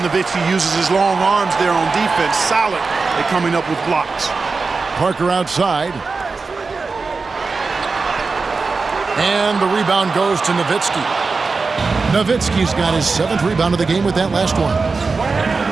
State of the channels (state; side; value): quieter; left; 4.3 dB